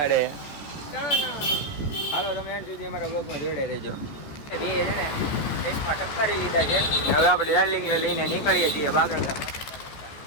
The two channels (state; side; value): late; right; 14 ms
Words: હાલો, તમે એન્ડ સુધી અમારા બ્લોગમાં જોડાઈ રહેજો. બે છે ને ટેસ્ટમાં ટપકારી લીધા છે. હવે આપણે ડાર્લિંગને લઈને નીકળીએ છીએ બાગળ.